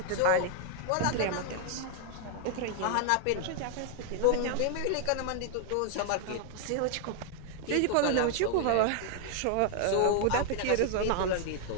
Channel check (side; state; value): both; different; correlation 0.00